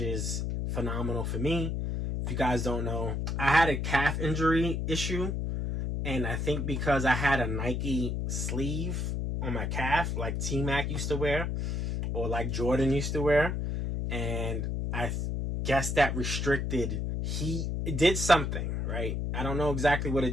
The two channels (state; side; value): noise; left; hum, 1 dB below the sound